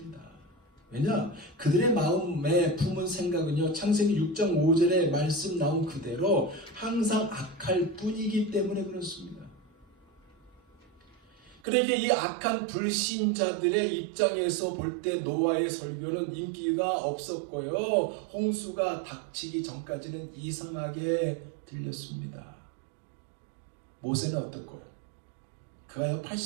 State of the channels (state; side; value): drops out; left; at 11.6 s